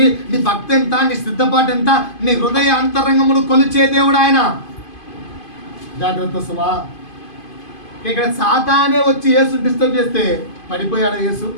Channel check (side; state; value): right; late; 2.5 ms